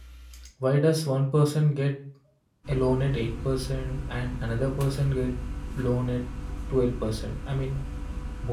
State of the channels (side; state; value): both; identical; correlation 1.00